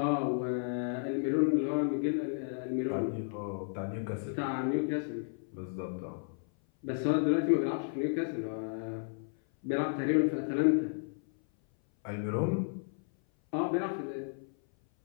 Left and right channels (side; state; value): right; silent; 56 dB below the other